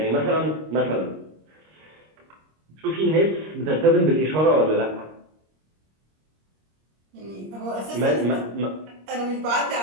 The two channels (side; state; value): left; late; 26 ms